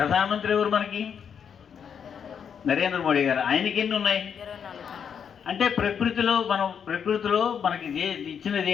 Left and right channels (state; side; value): quieter; right; 7.5 dB